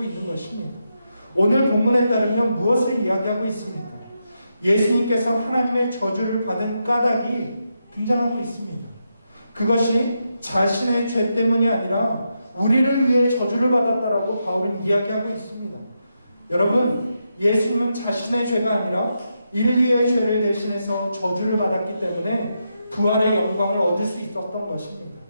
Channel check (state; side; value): inverted; both; correlation -0.84